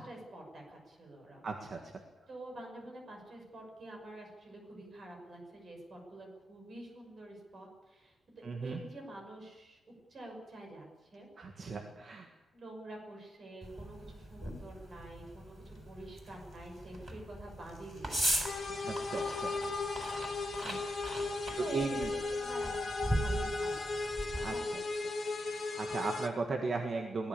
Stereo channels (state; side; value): normal; both; correlation 0.85